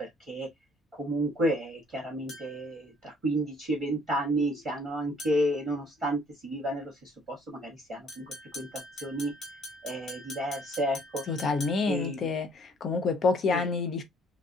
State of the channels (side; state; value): both; normal; correlation 0.60